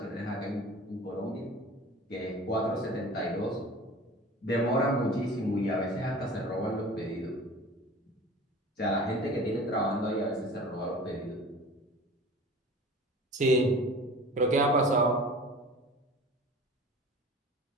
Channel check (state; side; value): normal; both; correlation 0.41